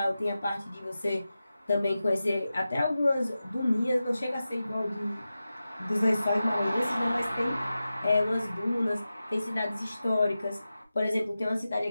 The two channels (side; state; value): both; inverted; correlation -0.94